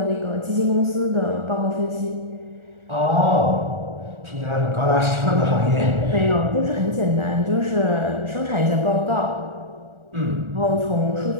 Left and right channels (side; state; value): left; late; 1.4 ms